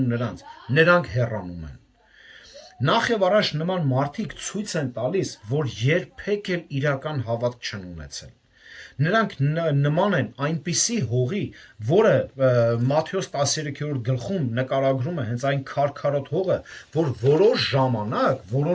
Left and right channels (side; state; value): both; identical; correlation 1.00